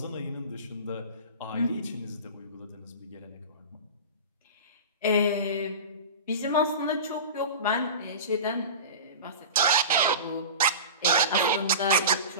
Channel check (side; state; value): both; inverted; correlation -0.31